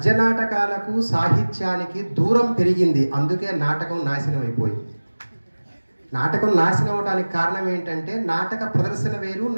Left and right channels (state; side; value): inverted; both; correlation -1.00